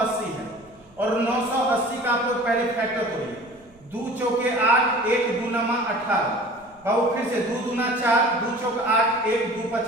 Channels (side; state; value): right; noise; rumble, 29 dB below the sound